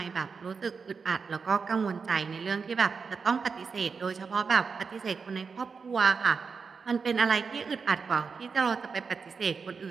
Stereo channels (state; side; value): quieter; left; 5.3 dB